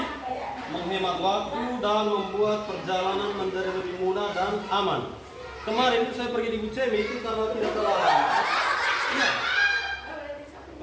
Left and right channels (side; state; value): both; identical; correlation 1.00